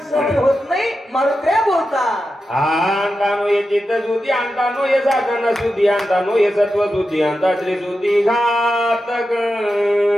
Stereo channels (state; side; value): normal; both; correlation 0.90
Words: सहन होत नाही. मारुत्र्या बोलतात अंतानो ये चित्त सुधी, अंतानो ये साधन सुधी, अंतानो ये सत्व सुधी, अंता श्री सुधी घातक.